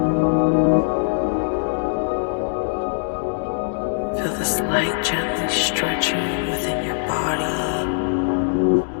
Feel this light gently stretching within your body,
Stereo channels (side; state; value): right; silent; digital silence